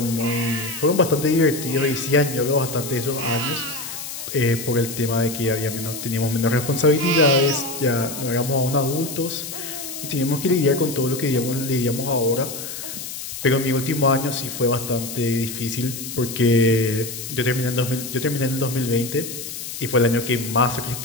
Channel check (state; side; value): noise; left; hiss, 8 dB below the sound